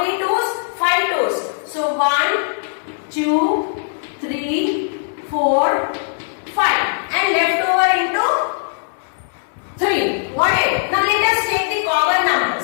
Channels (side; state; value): right; silent; digital silence